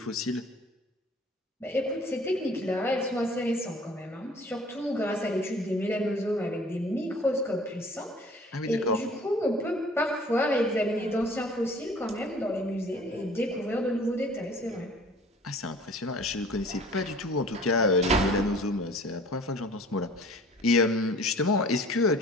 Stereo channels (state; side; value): normal; both; correlation 0.49